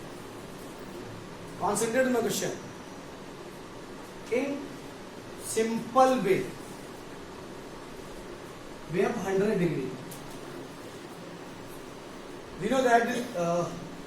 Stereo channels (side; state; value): both; identical; correlation 1.00